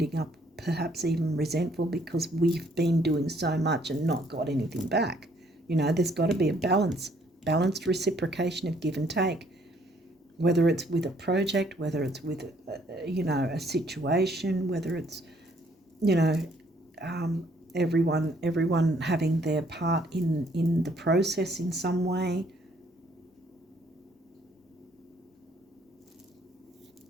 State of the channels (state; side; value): normal; both; correlation 0.65